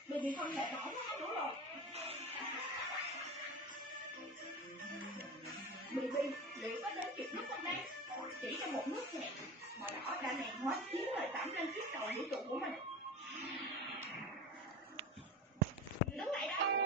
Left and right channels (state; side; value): normal; both; correlation 0.29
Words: Mình không thể bỏ nó nữa rồi. Baby, liệu có đến kịp lúc không đây? Chỉ trong một nước nhẹ, màu đỏ đã hẹn hóa chiếu lời tẩm lên chiếc cầu vũ trụ của mình. Đứng lại đó,